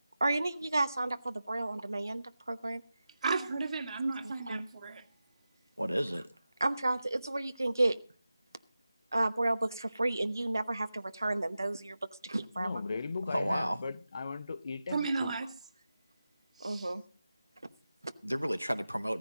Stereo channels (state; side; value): inverted; both; correlation -0.93